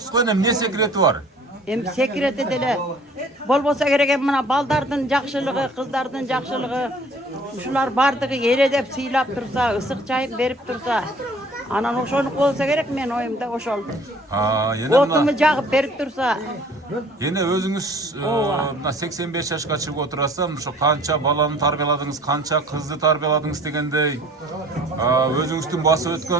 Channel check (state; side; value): normal; both; correlation 0.52